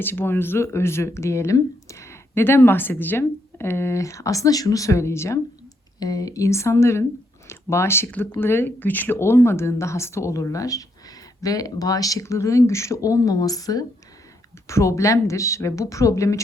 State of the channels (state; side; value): normal; both; correlation 0.76